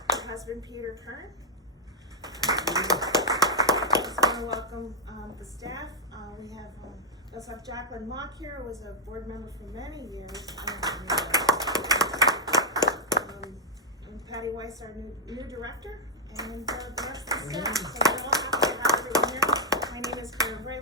Her husband, Peter Kern. I just want to welcome the staff. We also have Jacqueline Mock here, who was a board member for many years. And Patty Weiss, our new director. And the rest of the staff. So we're all happy to have everyone here. My name is Kern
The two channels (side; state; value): both; normal; correlation -0.02